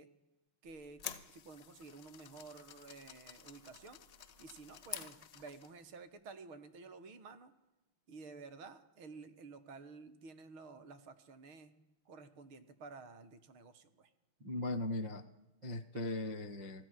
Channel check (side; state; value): left; late; 5.5 ms